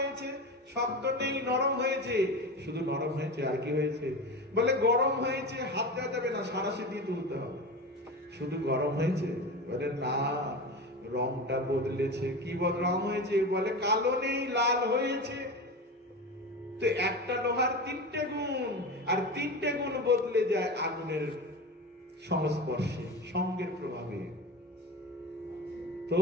শক্ত নেই, নরম হয়েছে। শুধু নরম হয়েছে, আর কি হয়েছে? বলে গরম হয়েছে, হাত দেওয়া যাবে না, সাঁড়াশি দিয়ে তুলতে হবে। শুধু গরম হয়েছে? বলে না, রংটা বদলেছে। কি রং হয়েছে? বলে কালো নেই, লাল হয়েছে। তো একটা লোহার তিনটে গুণ, আর তিনটে গুণ বদলে যায় আগুনের সংস্পর্শে, সঙ্গের প্রভাবে। তো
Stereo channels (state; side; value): normal; both; correlation 0.27